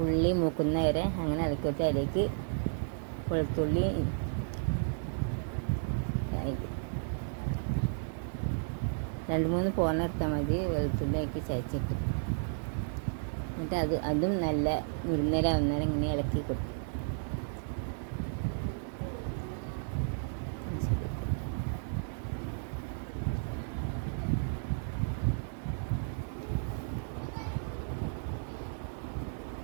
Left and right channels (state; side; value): silent; left; digital silence